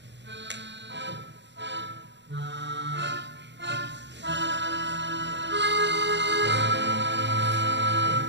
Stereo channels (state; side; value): late; left; 0.52 ms